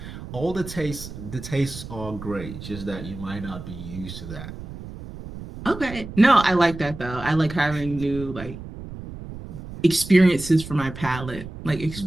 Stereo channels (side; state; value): right; noise; rumble, 12 dB below the sound